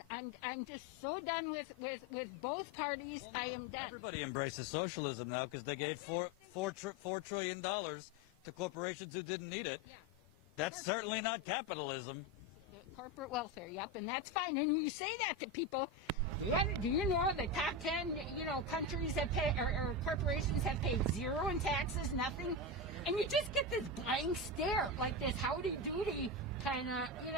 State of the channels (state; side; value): normal; both; correlation 0.16